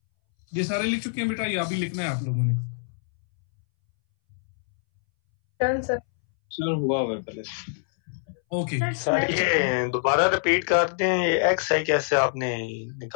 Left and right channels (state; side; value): silent; right; 62 dB below the other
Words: ये सारे लिख चुके हैं बेटा, ये अभी लिखना है आप लोगों ने। Done sir. सर हुआ हुआ पहले। ओके सर ये दोबारा रिपीट करते हैं, ये XI कैसे आपने